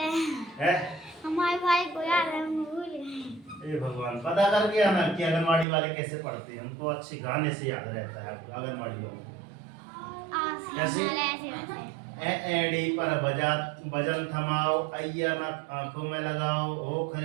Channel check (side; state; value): left; drops out; at 5.7 s